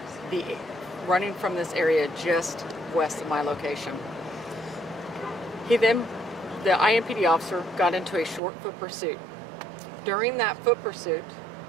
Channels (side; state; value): left; drops out; at 8.4 s